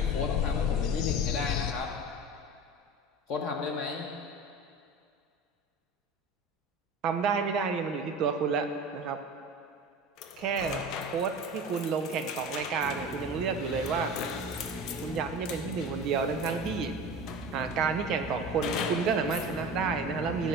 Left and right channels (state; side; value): normal; both; correlation 0.33